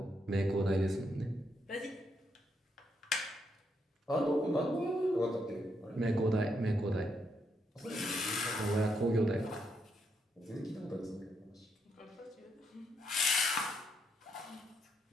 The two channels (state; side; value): normal; both; correlation 0.78